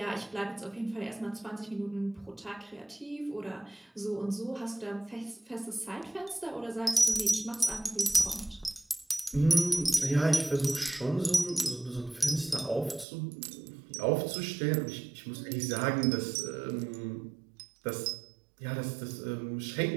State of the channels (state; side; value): drops out; left; at 13.1 s